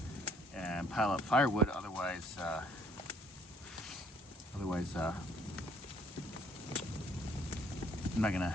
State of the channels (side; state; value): both; normal; correlation 0.63